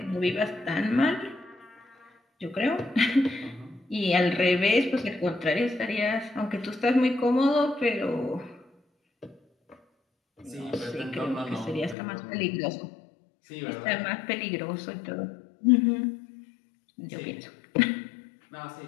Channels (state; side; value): drops out; right; at 12.0 s